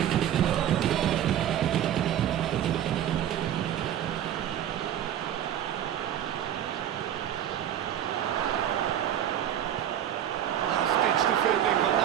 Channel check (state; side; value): quieter; left; 10.6 dB